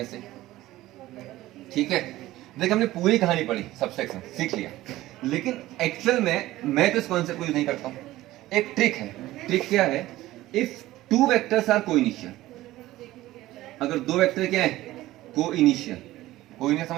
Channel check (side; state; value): left; quieter; 16.3 dB